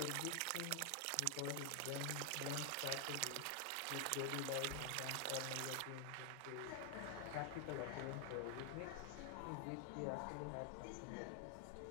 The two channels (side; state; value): both; different; correlation 0.00